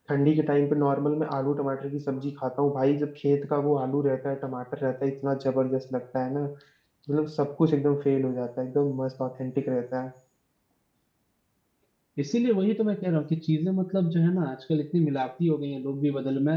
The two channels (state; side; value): identical; both; correlation 1.00